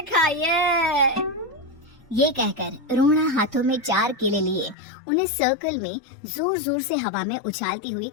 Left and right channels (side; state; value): right; drops out; at 4.8 s